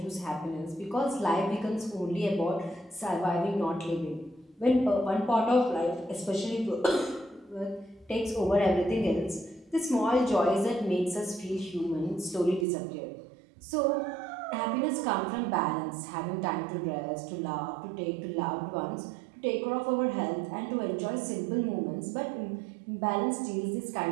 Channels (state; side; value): drops out; left; at 12.7 s